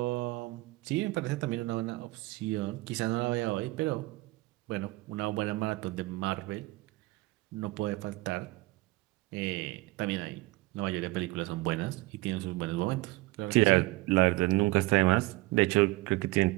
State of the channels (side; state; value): left; quieter; 20.8 dB